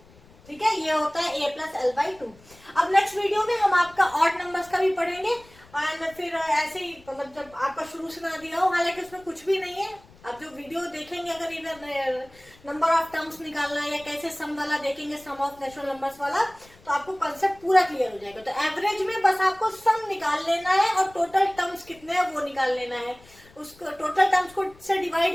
ठीक है, ये होता है A प्लस एल बाई 2। अब नेक्स्ट वीडियो में हम आपका ऑड नंबर्स का भी पढ़ेंगे, और फिर ऐसे ही मतलब जब आपका शुरू से ना दिया हो, हालांकि उसमें कुछ भी नहीं है, आप जो वीडियो देखेंगे अगर इधर नंबर ऑफ टर्म्स निकालना है या कैसे सम वाला देखेंगे, सम ऑफ नेचुरल नंबर्स वाला, तो आपको कंसेप्ट पूरा क्लियर हो जाएगा। तो एवरेज में बस आपको सम निकाल लेना है और टोटल टर्म्स कितने हैं वो निकाल लेना है, उसको टोटल टर्म्स को से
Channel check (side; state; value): left; noise; rumble, 25 dB below the sound